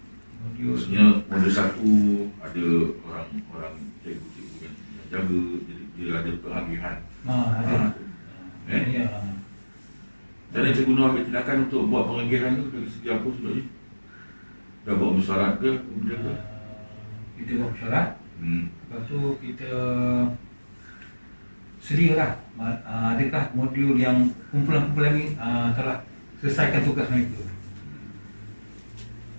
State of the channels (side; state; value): both; inverted; correlation -1.00